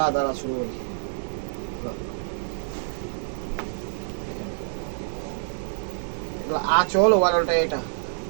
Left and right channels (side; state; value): left; silent; digital silence